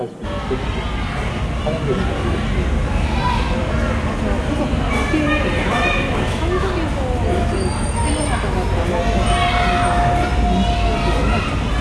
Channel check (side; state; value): both; identical; correlation 1.00